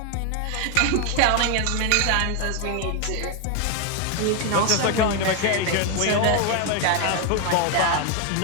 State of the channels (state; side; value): different; both; correlation 0.01